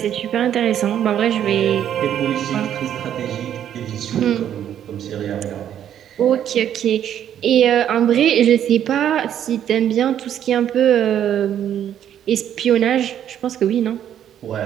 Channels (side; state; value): left; quieter; 10.1 dB